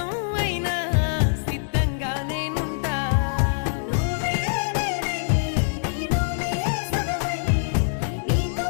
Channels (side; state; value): right; silent; digital silence